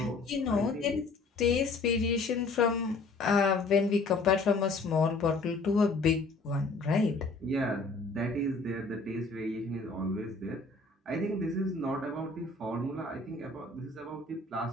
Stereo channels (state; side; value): quieter; right; 3.6 dB